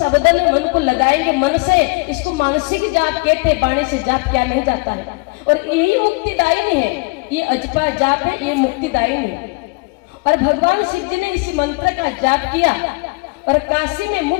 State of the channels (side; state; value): right; quieter; 29.9 dB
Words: मन को लगाएंगे, मन से, इसको मानसिक जाप कहते हैं, वाणी से जाप किया नहीं जाता है। और यही मुक्तिदायिनी है, ये अजपा जाप है, ये मुक्तिदायिनी है। और भगवान शिव जी ने इसी मंत्र का जाप किया और काशी में